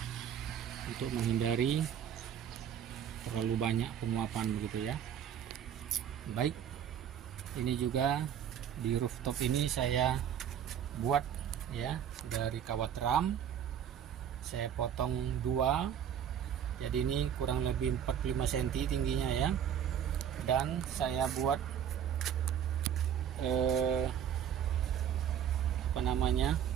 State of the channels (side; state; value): left; quieter; 9.1 dB